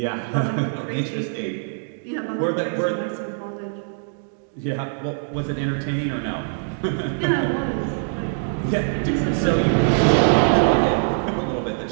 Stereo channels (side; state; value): left; silent; digital silence